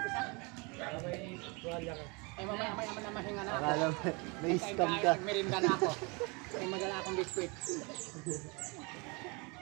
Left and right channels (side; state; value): left; quieter; 29.5 dB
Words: Eh mamaya na mahinga na ako. Akala mo, may scam ka. Merinda na ako. May madala akong biskwit.